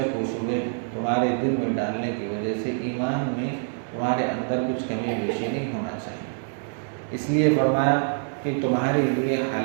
و شبہ تمہارے دل میں ڈالنے کی وجہ سے ایمان میں تمہارے اندر کچھ کمی بیشی نہیں ہونا چاہیے۔ اس لیے فرمایا کہ تمہارے لیے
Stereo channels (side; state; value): left; silent; digital silence